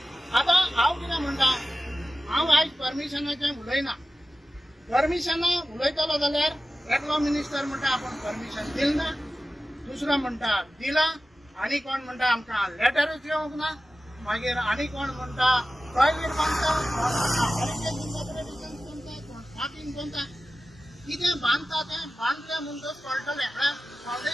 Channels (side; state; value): both; normal; correlation 0.95